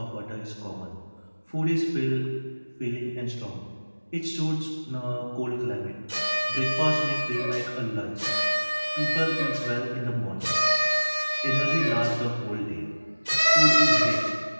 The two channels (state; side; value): inverted; both; correlation -1.00